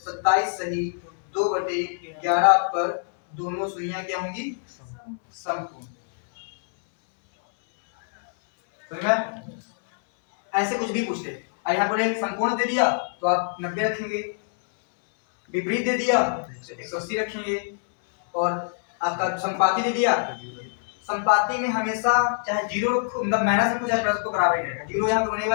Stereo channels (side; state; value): right; silent; 62 dB below the other